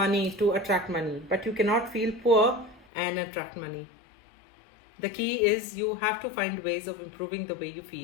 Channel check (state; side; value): drops out; right; at 2.9 s